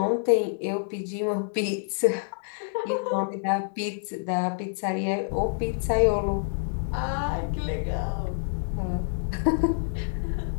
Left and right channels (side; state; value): right; silent; digital silence